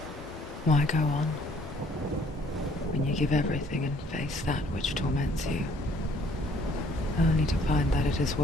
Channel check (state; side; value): normal; both; correlation 0.61